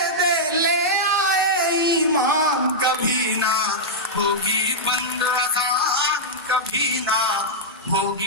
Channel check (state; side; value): normal; both; correlation -0.08